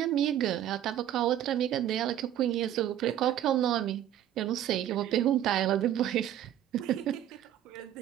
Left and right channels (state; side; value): quieter; left; 11.4 dB